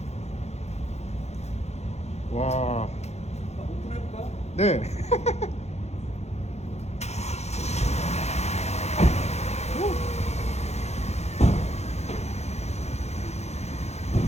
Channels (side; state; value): right; late; 0.31 ms